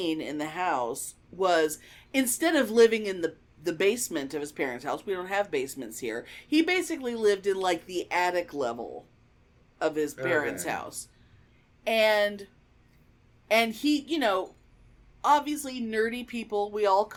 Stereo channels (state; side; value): identical; both; correlation 1.00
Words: in the house was, instead of living in the basement of his parents' house, we don't have basements here, he basically lived in, like, the attic level of his parents' house. And he, you know, obviously nerdy people, we all